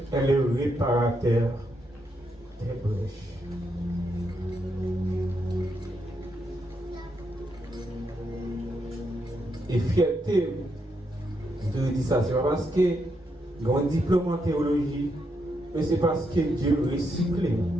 est le réparateur des brèches. Et fierté de dire ça, c'est pas parce que j'ai un diplôme en théologie, mais c'est parce que Dieu recycle.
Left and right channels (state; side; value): normal; both; correlation 0.80